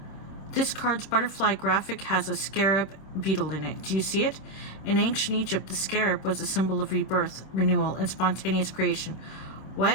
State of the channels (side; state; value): right; late; 26 ms